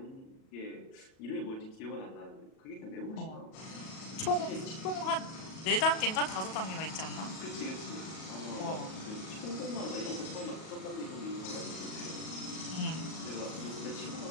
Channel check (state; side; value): late; right; 37 ms